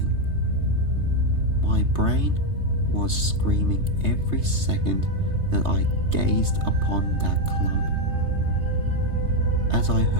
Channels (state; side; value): late; left; 3.3 ms